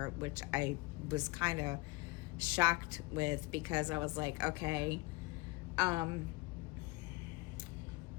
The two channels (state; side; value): quieter; right; 23.2 dB